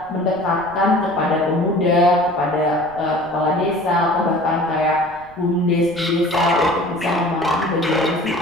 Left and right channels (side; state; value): left; noise; rumble, 26 dB below the sound